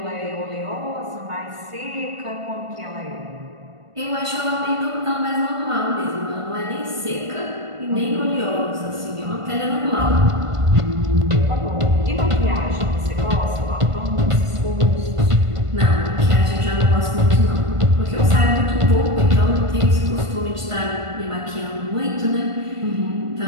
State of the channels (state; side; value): late; left; 1.5 ms